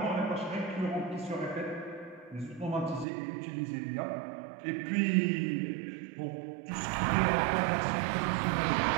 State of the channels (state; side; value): drops out; left; at 3.1 s